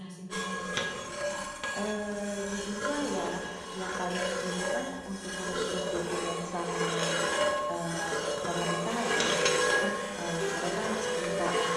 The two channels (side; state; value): both; identical; correlation 1.00